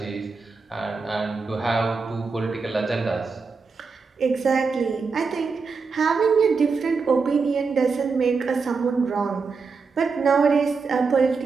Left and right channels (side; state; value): left; quieter; 4.8 dB